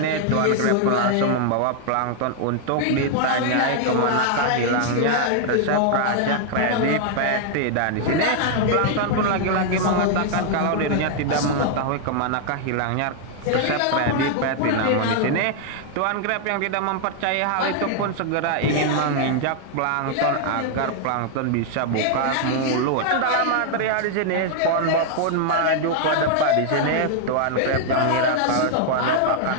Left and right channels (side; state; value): both; different; correlation 0.00